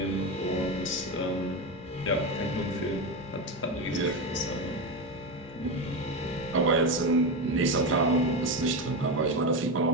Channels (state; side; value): normal; both; correlation 0.16